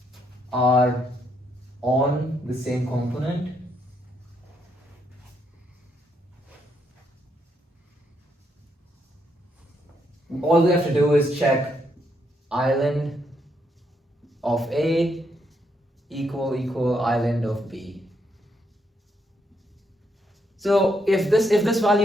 are on the same component, all we have to do is check island of A equal island of B. So if this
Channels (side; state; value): both; normal; correlation 0.76